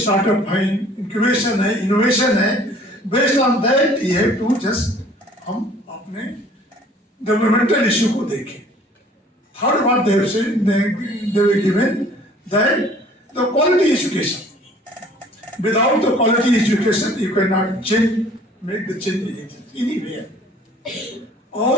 है, इंक्यूबेशन है, इनोवेशन है, based on that you have to just हम अपने डेवलपमेंटल इश्यू को देखें. थर्ड बात they were given that the quality education. Without the quality education, you cannot change, make the change anywhere.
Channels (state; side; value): normal; both; correlation 0.53